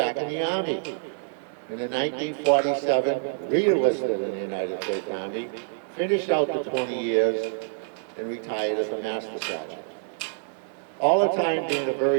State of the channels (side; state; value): left; silent; digital silence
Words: in the Army. And in 1947, re-enlisted in the United States Army, finished out the 20 years, and retired as a Master Sergeant. All the time being a